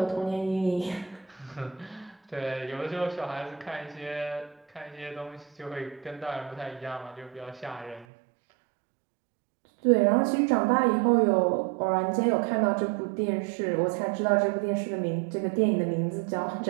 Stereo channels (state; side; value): drops out; left; at 8.1 s